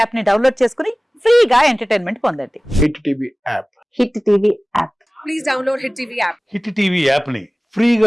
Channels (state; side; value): normal; both; correlation 0.98